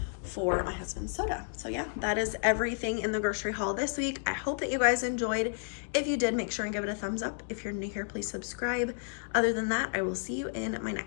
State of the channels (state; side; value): silent; right; digital silence